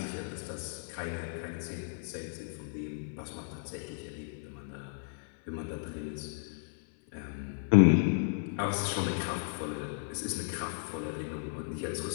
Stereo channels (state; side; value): silent; right; 55 dB below the other